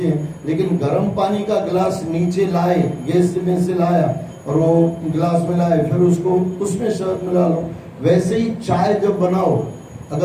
हैं, लेकिन गर्म पानी का गिलास नीचे लाए, गैस में से लाया और वो गिलास में लाए, फिर उसको उसमें शहद मिला लो। वैसे ही चाय जब बनाओ,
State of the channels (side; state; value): both; identical; correlation 1.00